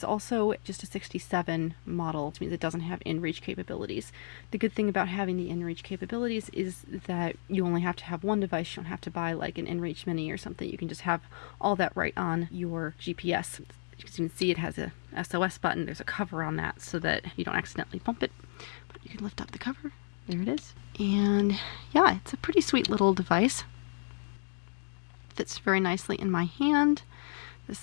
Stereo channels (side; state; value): right; silent; digital silence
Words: also just a 67 model, which means it doesn't have inReach capabilities. The good thing about having the inReach capabilities is that you only have to have one device. You don't have to buy like an inReach Mini or something. You can just have all that right on your GPS. As you can see, it has a SOS button. There's a cover on that so that you don't accidentally bump it. But you can lift up the cover. There it is. And yeah, it's a pretty sweet little device. Fits very nicely in my hand.